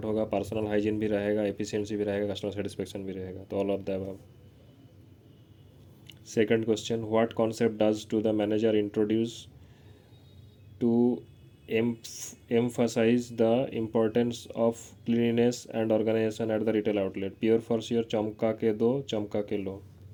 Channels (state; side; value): identical; both; correlation 1.00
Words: होगा, पर्सनल हाइजीन भी रहेगा, एफिशिएंसी भी रहेगा, कस्टमर सेटिस्फेक्शन भी रहेगा। तो all of the above. Second question, what concept does to the manager introduce to emphasize the importance of cleanliness and organization at the retail outlet? Pure for sure, चमका के दो, चमका के लो।